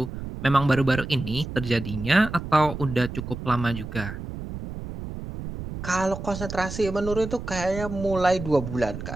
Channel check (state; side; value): noise; right; rumble, 8 dB below the sound